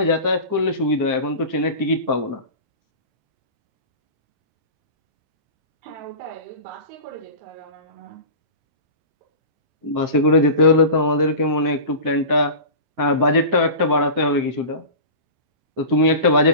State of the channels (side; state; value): left; late; 9.3 ms